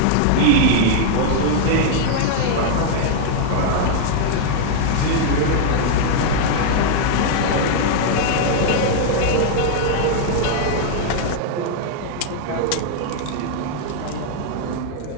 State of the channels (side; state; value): both; different; correlation 0.00